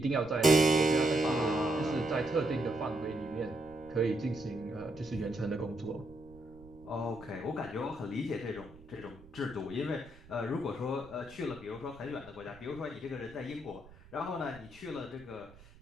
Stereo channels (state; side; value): noise; right; rumble, 22 dB below the sound